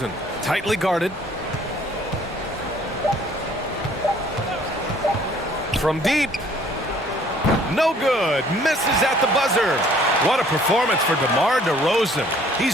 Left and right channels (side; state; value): both; normal; correlation 0.58